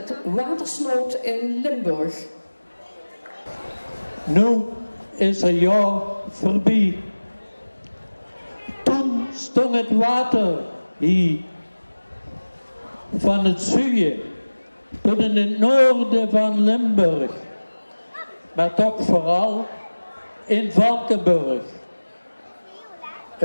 Watersnood in Limburg. Nu is een jaar voorbij. Toen stond het water hier. Van het zuiden tot in het noorden van Limburg. Maar toch vooral in Valkenburg.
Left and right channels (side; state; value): both; inverted; correlation -1.00